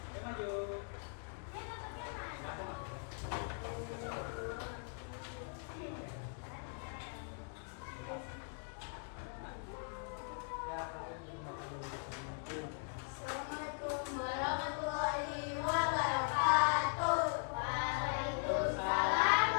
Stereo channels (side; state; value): right; silent; 51 dB below the other